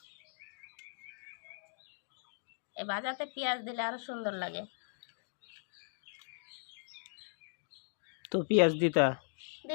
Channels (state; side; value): silent; right; digital silence